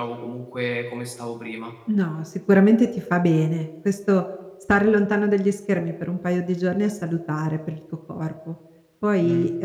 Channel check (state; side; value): identical; both; correlation 1.00